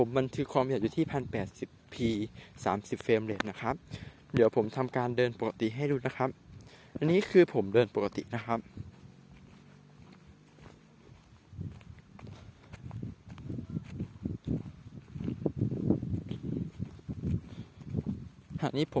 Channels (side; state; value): both; identical; correlation 1.00